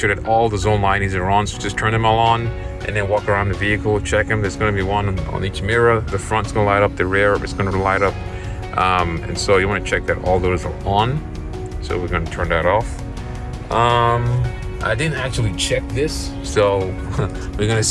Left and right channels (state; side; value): identical; both; correlation 1.00